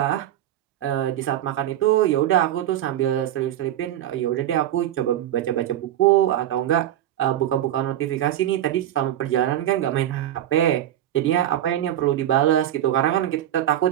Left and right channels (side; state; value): left; quieter; 12.3 dB